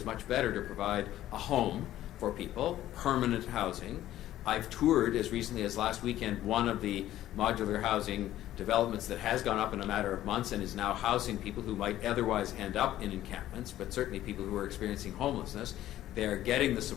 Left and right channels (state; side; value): quieter; right; 13.5 dB